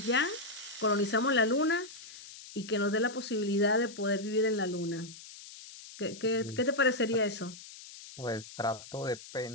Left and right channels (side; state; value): left; noise; hiss, 16 dB below the sound